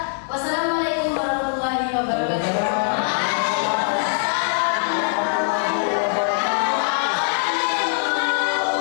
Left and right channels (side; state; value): right; silent; digital silence